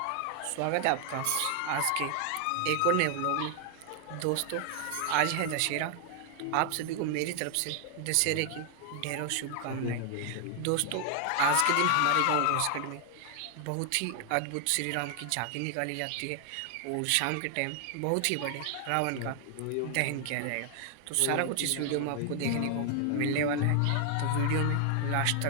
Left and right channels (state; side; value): different; both; correlation 0.00